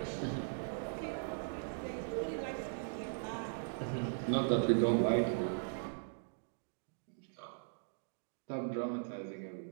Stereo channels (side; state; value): left; silent; digital silence